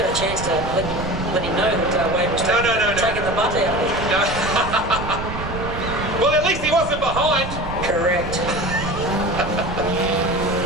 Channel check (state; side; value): noise; right; rumble, 8 dB below the sound